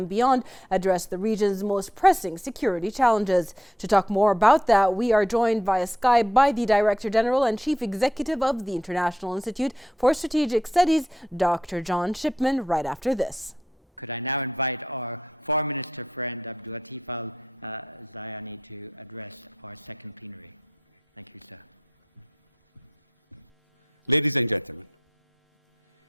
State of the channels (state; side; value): normal; both; correlation 0.81